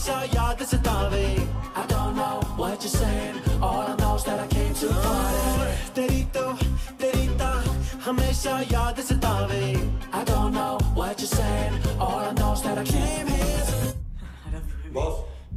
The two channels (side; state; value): both; identical; correlation 1.00